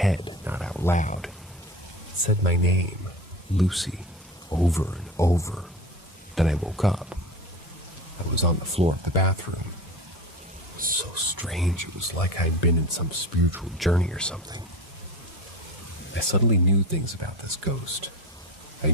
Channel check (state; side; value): normal; both; correlation 0.30